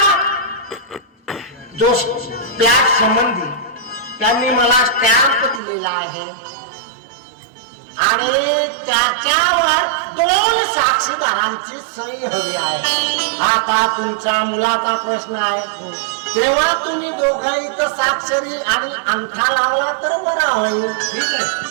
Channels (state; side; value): drops out; left; at 5.6 s